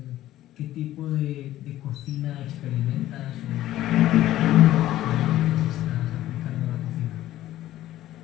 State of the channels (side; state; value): right; quieter; 14.2 dB